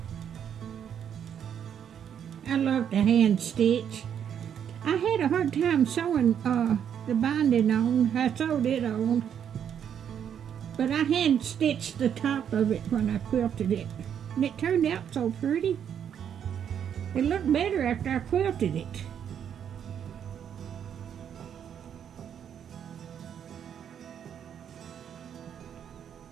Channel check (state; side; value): quieter; left; 8.7 dB